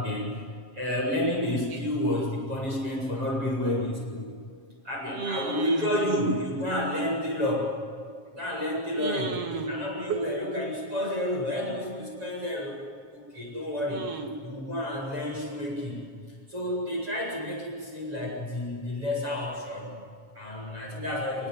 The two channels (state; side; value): late; left; 7.4 ms